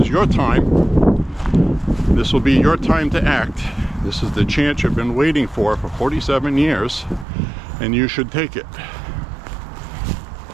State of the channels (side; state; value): left; drops out; at 7.2 s